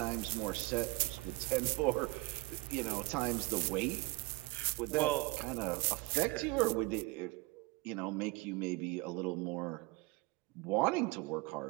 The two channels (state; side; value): quieter; left; 23.2 dB